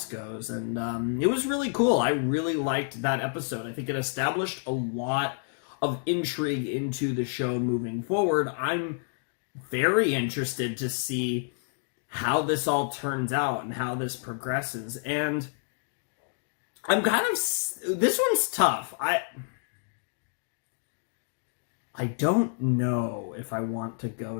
goes. And it was really cool. I really liked that episode. I think it established a lot of intrigue into the show moving forward. I'm very interested to see how this all turns out and how this progresses. And I'm kind of, this one's tough. I don't know if I want to go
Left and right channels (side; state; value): right; silent; digital silence